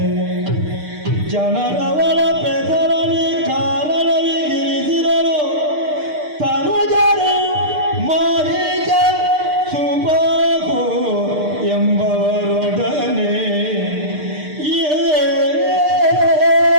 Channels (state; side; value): late; left; 6.6 ms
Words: ಜನರವಳ ಪೆದರಲಿ ಕಾರಣವಿಗಿರಿಸಿರಲು ತನುಜರು ಮಾರೀಚ ಸುಬಾಹು ಎಂಬವರೊಡನೆ